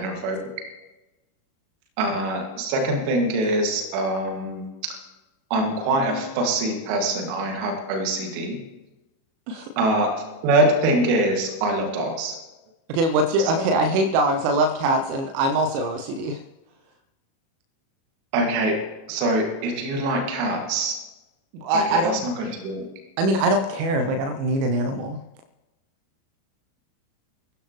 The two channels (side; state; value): left; late; 37 ms